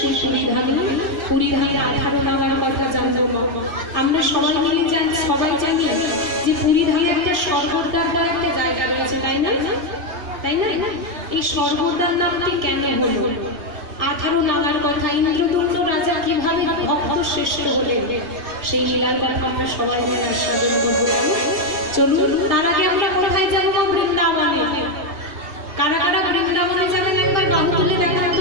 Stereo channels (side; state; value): left; late; 2.5 ms